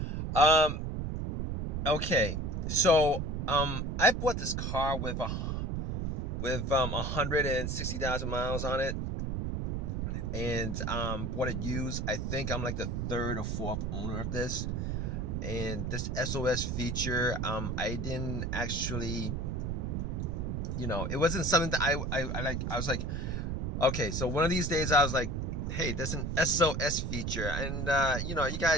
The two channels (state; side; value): noise; right; rumble, 2 dB below the sound